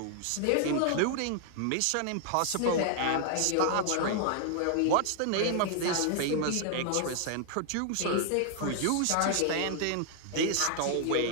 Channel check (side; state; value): both; different; correlation 0.00